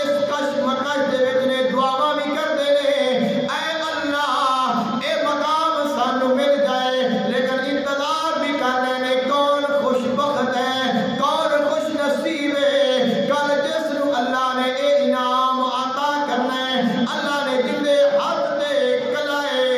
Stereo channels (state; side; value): identical; both; correlation 1.00